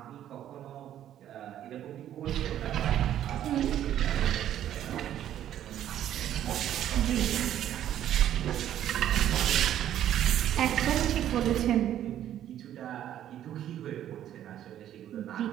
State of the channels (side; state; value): left; quieter; 11.3 dB